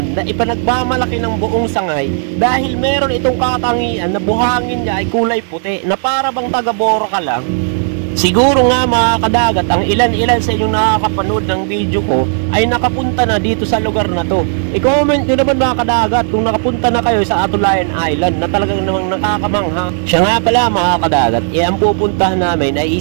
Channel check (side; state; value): left; silent; digital silence